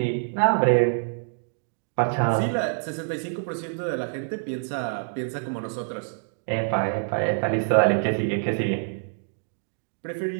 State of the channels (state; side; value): silent; left; digital silence